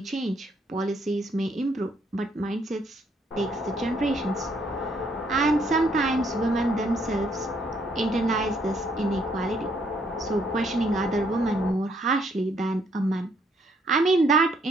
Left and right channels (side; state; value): both; normal; correlation 0.69